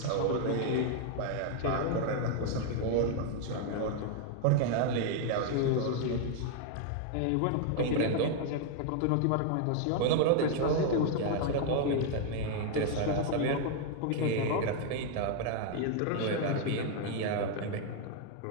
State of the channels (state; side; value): different; both; correlation 0.00